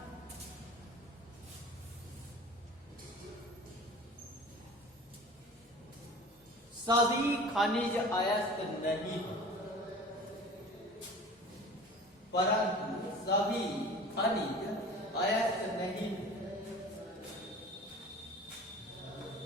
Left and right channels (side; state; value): both; normal; correlation 0.41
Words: सभी खनिज अयस्क नहीं, परंतु सभी खनिज अयस्क नहीं।